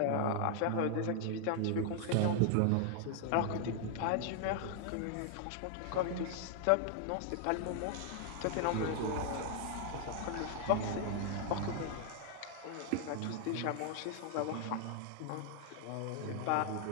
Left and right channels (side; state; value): both; different; correlation 0.00